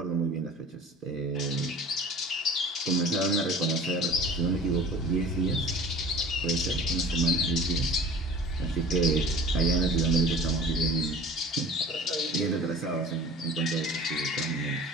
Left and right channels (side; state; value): both; normal; correlation 0.43